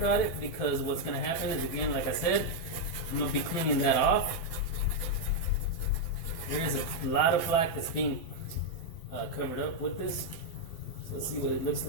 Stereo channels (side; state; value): right; late; 12 ms